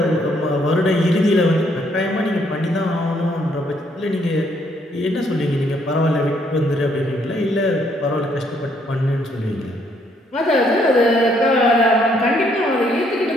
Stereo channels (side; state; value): both; normal; correlation 0.69